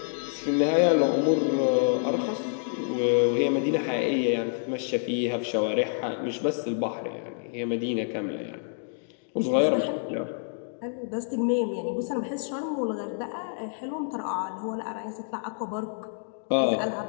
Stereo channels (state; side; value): silent; right; digital silence